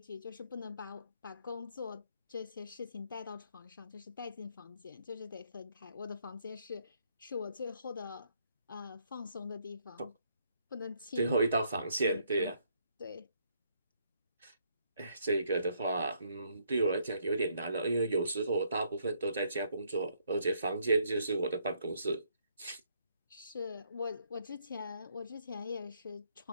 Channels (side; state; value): both; inverted; correlation -0.70